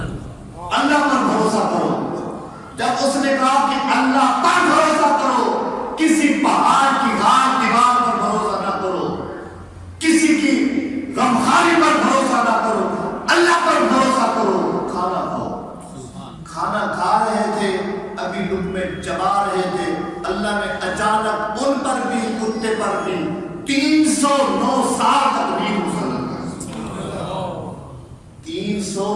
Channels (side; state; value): both; identical; correlation 1.00